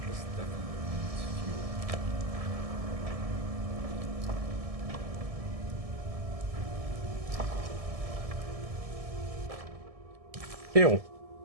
This definitely needs fuel. Ew.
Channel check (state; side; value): late; left; 1.7 ms